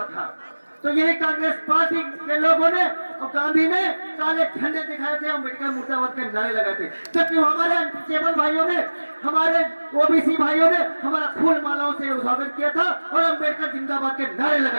था, तो यही कांग्रेस पार्टी के लोगों ने और गांधी ने काले झंडे दिखाए थे, अम्बेडकर मुर्दाबाद के नारे लगाए थे। जबकि हमारे अनटचेबल भाइयों ने, हमारे ओबीसी भाइयों ने हमारा फूल मालाओं से स्वागत किया था और अम्बेडकर जिंदाबाद के नारे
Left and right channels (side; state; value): both; inverted; correlation -1.00